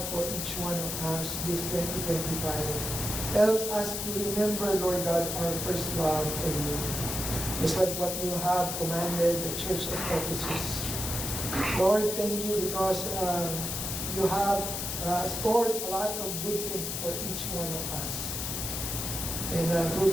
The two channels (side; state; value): left; noise; hiss, 3 dB below the sound